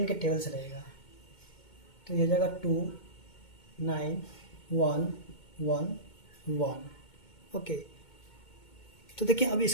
के टेबल से लगेगा, तो ये हो जाएगा 2 9 1 1 1। ओके, तो देखिए अब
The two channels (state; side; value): late; right; 2.2 ms